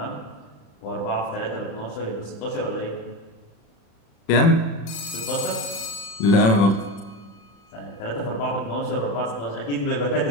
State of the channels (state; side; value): late; right; 36 ms